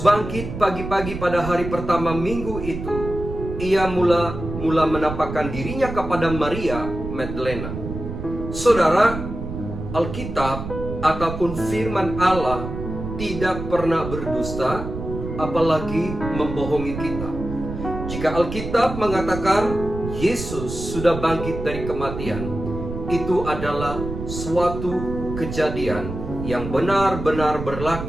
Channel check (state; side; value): noise; right; rumble, 7 dB below the sound